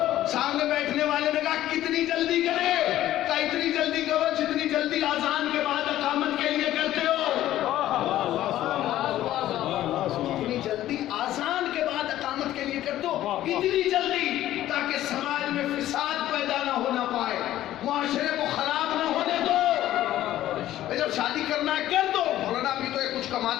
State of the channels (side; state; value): right; quieter; 13.6 dB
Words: سامنے بیٹھنے والے نے کہا کتنی جلدی کرے؟ کہا اتنی جلدی کرو جتنی جلدی اذان کے بعد اقامت کے لیے کرتے ہو، اتنی جلدی اذان کے بعد اقامت کے لیے کرتے ہو، اتنی جلدی تاکہ سماج میں فساد پیدا نہ ہونا پائے، معاشرے کو خراب نہ ہونے دو۔ جب شادی کرنا ہے کر دو۔ مولانا ابھی تو یہ کچھ